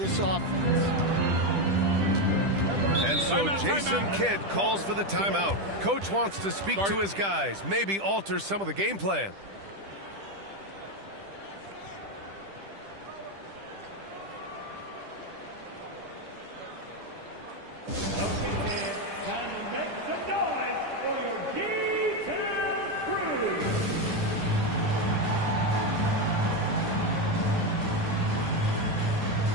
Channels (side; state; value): left; late; 10 ms